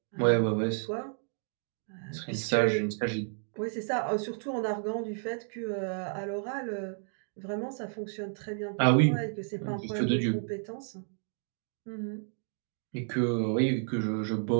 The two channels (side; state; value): left; silent; 57 dB below the other